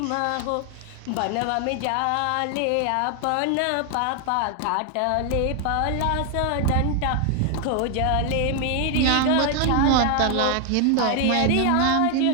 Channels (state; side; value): different; both; correlation 0.00